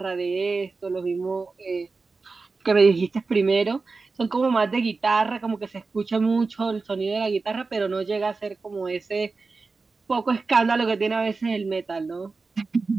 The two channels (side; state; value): left; quieter; 4.1 dB